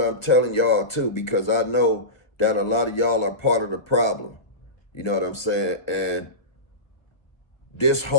telling y'all too, because I know that a lot of y'all are part of the problem. You know what I'm saying? And this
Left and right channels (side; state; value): right; late; 1.1 ms